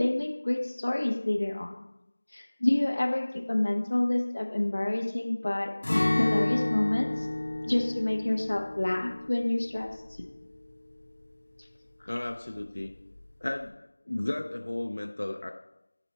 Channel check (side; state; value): both; inverted; correlation -1.00